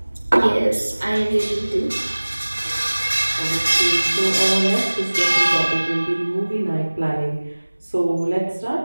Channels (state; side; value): inverted; both; correlation -1.00